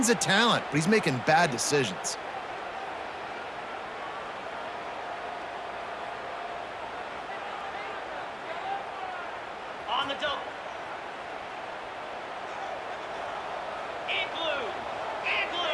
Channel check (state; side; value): identical; both; correlation 1.00